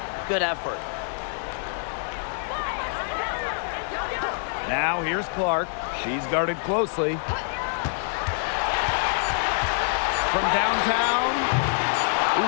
Good effort. Now here's Clark. She's guarded closely. From downtown,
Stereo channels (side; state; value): right; silent; 61 dB below the other